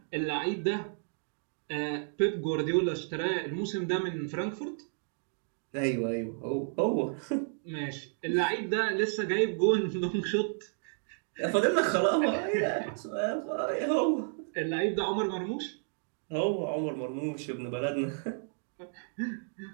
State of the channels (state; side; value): silent; left; digital silence